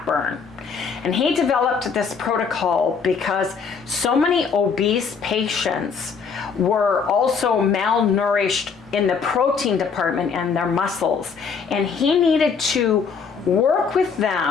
And he developed this protocol because so many obese patients were also malnourished in the protein department and their muscles, and he needed to work with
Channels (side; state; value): right; quieter; 5.8 dB